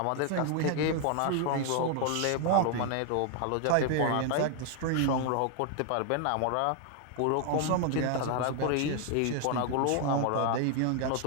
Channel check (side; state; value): both; different; correlation 0.00